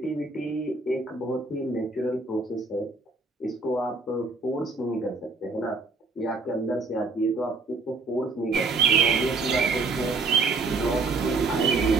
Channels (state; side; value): quieter; left; 3.7 dB